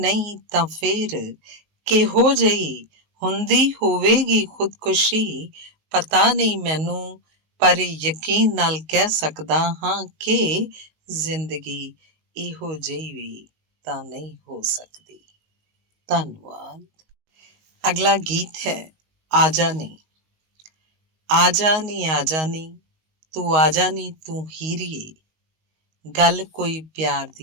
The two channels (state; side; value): late; left; 19 ms